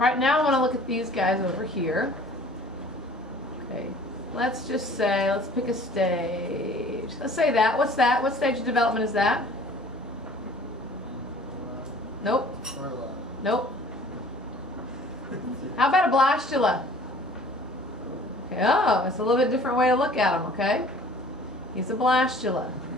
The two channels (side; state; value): both; normal; correlation 0.50